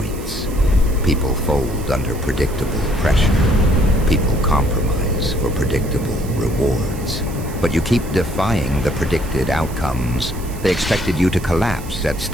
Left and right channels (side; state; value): right; noise; hiss, 17 dB below the sound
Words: People fold under predictable pressure. People compromise for predictable rewards. But you keep defying the predicted outcomes. They expected you to collapse at